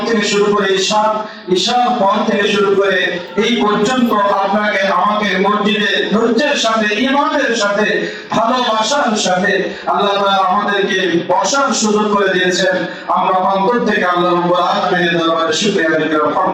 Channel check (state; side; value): identical; both; correlation 1.00